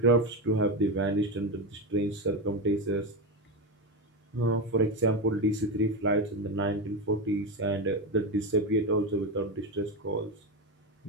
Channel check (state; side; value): normal; both; correlation 0.14